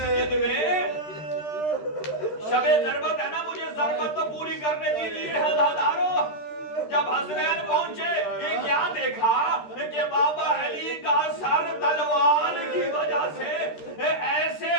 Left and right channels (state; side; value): late; right; 13 ms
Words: میں، شب ضربت ہے نا، مجھے ضربت تو پوری کرنے دیجیے عزادارو۔ جب حسنین پہنچے یہ کیا دیکھا کہ بابا علی کا سر تلوار کی وجہ سے ایسے